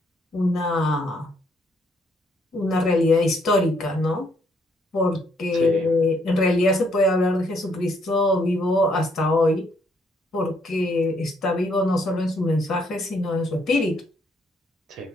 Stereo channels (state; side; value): normal; both; correlation 0.70